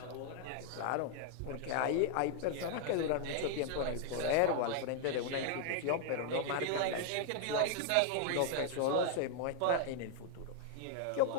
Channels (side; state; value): both; different; correlation 0.00